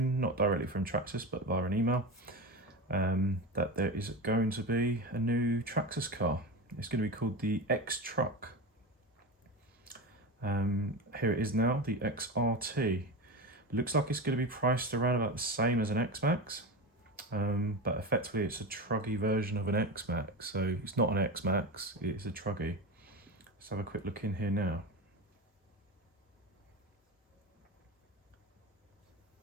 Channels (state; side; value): normal; both; correlation 0.23